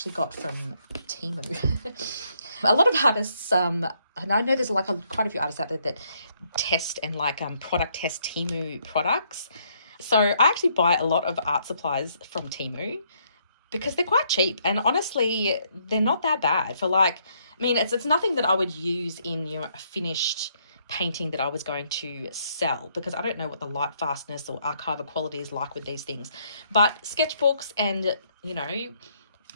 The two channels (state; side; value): inverted; both; correlation -0.71